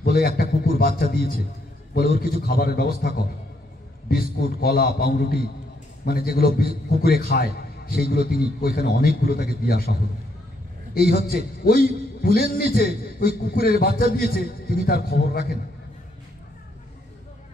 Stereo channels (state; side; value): normal; both; correlation 0.74